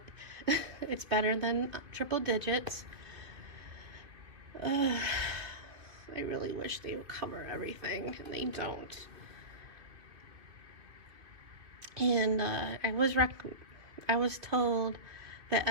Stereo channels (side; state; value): left; late; 2.5 ms